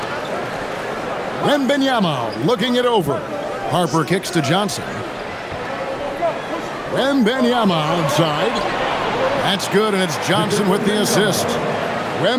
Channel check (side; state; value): both; identical; correlation 1.00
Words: Wembanyama looking it over. Harper kicks to Johnson. Wembanyama outside. That's good, and it's Johnson with the assist.